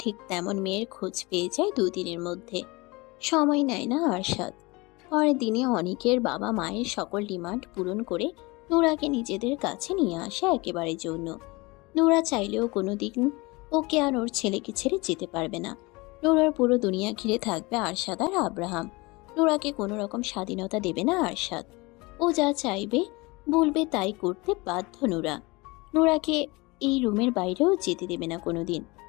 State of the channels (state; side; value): quieter; right; 24.6 dB